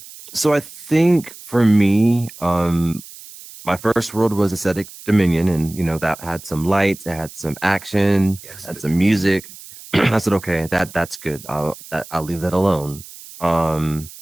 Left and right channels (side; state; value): right; noise; hiss, 17 dB below the sound